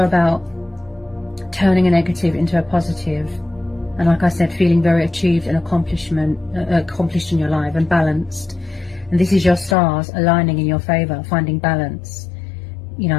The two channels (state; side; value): drops out; right; at 9.8 s